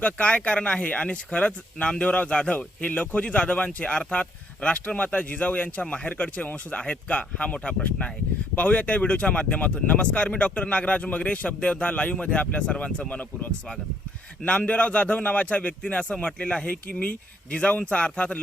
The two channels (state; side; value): normal; both; correlation 0.69